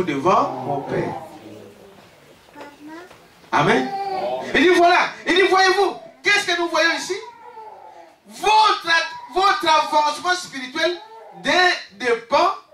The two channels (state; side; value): identical; both; correlation 1.00